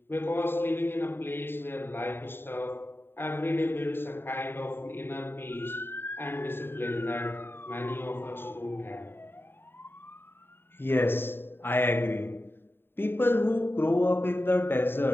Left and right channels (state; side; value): late; right; 0.11 ms